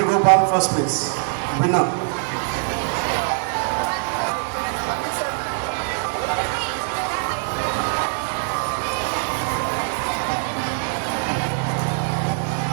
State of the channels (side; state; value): left; silent; 64 dB below the other